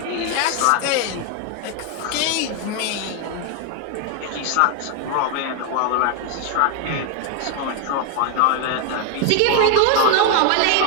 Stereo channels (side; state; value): both; different; correlation 0.01